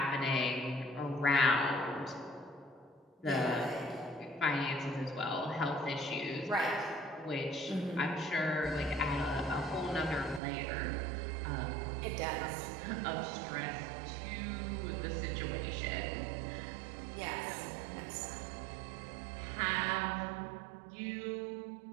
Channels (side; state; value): left; drops out; at 10.4 s